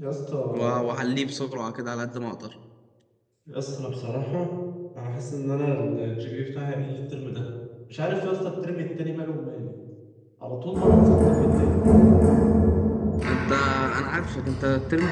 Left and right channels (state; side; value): identical; both; correlation 1.00